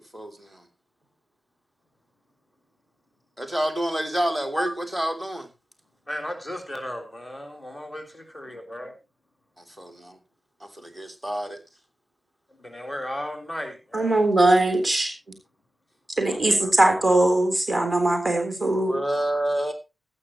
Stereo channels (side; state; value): both; normal; correlation 0.94